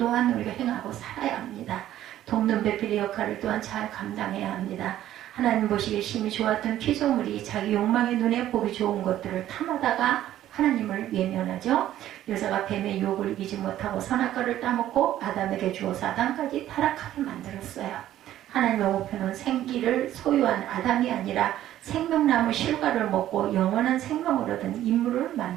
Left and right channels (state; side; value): quieter; left; 12.8 dB